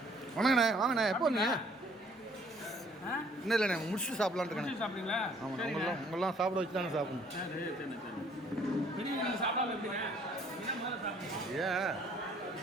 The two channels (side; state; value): both; normal; correlation 0.59